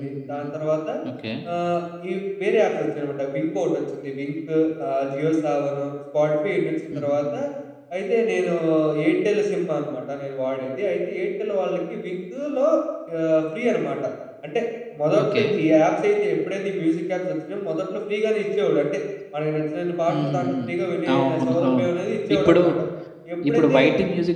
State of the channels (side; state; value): both; identical; correlation 1.00